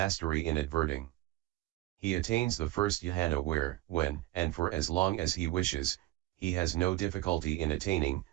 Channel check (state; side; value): quieter; left; 17.5 dB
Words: in adverting. He attains the first dhyana where, when, and for as long as he wishes, he has no difficulty in attaining,